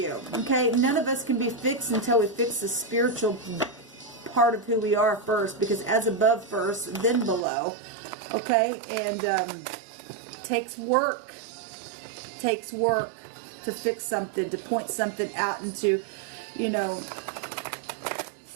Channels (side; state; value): left; drops out; at 7.5 s